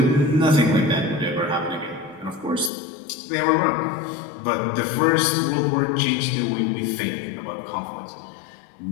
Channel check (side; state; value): right; drops out; at 2.7 s